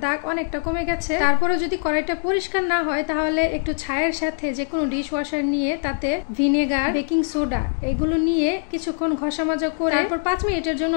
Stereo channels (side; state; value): right; silent; 62 dB below the other